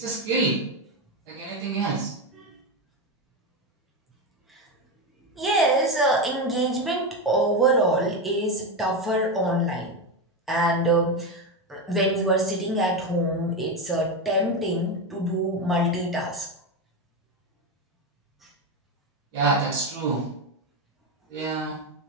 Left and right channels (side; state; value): both; normal; correlation 0.13